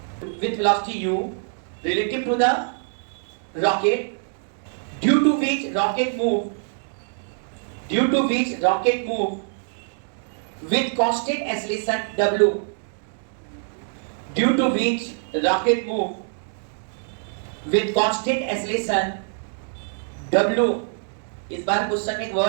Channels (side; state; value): left; silent; digital silence